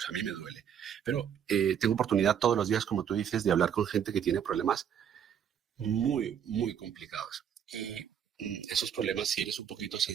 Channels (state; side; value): quieter; left; 8.6 dB